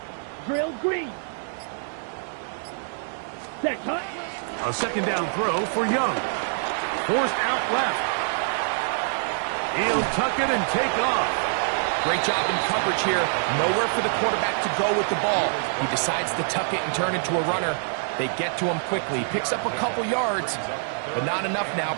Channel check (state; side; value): silent; left; 61 dB below the other